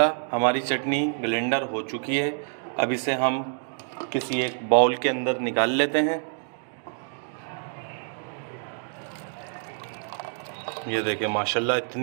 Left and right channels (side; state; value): left; silent; digital silence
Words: हमारी चटनी ब्लेंडर हो चुकी है। अब इसे हम किसी एक बाउल के अंदर निकाल लेते हैं। ये देखें माशाल्लाह